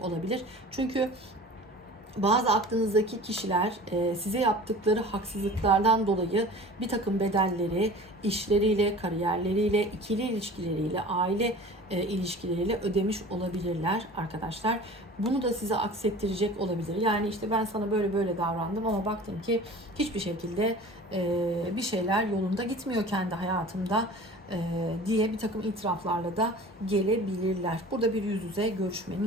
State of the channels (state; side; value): normal; both; correlation 0.41